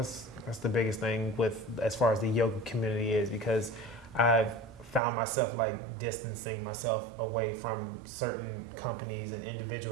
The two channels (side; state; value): left; drops out; at 5.0 s